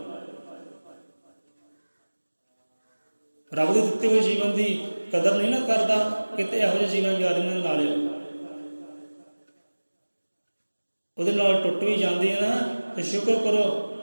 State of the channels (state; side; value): inverted; both; correlation -1.00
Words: ਰੱਬ ਦੇ ਦਿੱਤੇ ਹੋਏ ਜੀਵਨ ਦੀ ਕਦਰ ਨਹੀਂ ਨਾ ਕਰਦਾ, ਕਿਤੇ ਇਹੋ ਜਿਹੇ ਜੀਵਨ ਯਾਰੀ ਨਾਲ ਲਾ ਲਿਓ। ਉਹਦੇ ਨਾਲ ਟੁੱਟ ਵੀ ਜਾਂਦੀ ਹੈ ਨਾ, ਤੇ ਸ਼ੁਕਰ ਕਰੋ